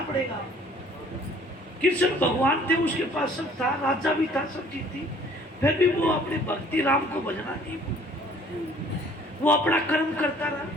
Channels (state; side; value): normal; both; correlation 0.55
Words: पड़ेगा। कृष्ण भगवान थे, उसके पास सब था, राजा भी था, सब चीज थी, फिर भी वो अपने भक्ति राम को भजना नहीं, वो अपना कर्म करता रहा।